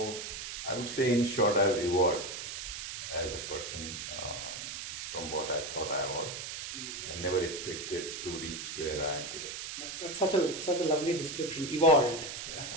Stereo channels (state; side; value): noise; right; hiss, 7 dB below the sound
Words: I would say, in short, I've evolved as a person from what I thought I was and never expected to reach where I am today. That's such a lovely description, evolved.